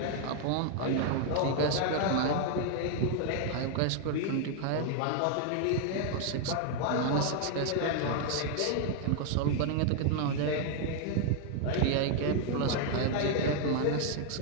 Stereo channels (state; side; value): different; both; correlation 0.00